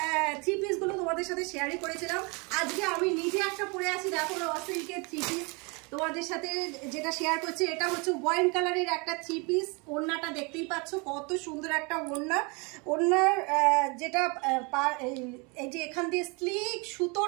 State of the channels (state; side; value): quieter; left; 30.6 dB